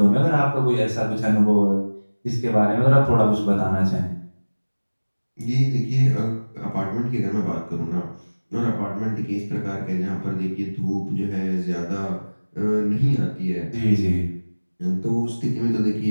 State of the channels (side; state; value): both; inverted; correlation -1.00